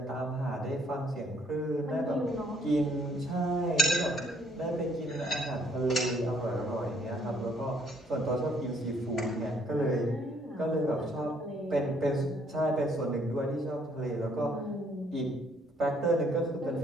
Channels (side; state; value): both; normal; correlation 0.65